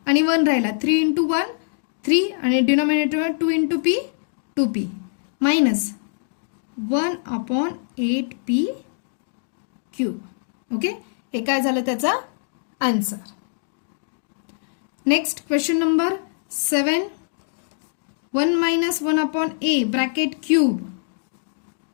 आणि 1 राहिला. 3 इंटू 1 3 आणि डिनॉमिनेटरमध्ये 2 into p 2p minus 1/8p cube. Okay, हे काय झालं त्याचा answer. Next question number 7. 1 minus 1/a bracket cube.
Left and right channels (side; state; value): right; silent; digital silence